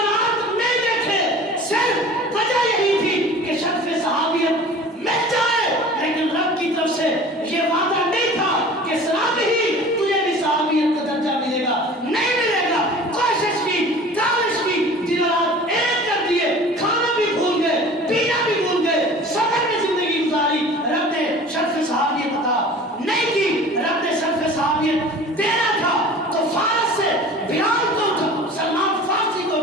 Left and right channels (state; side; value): normal; both; correlation 0.43